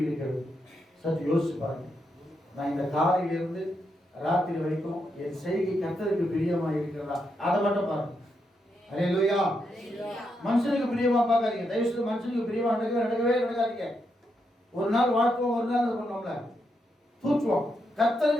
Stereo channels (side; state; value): both; normal; correlation 0.82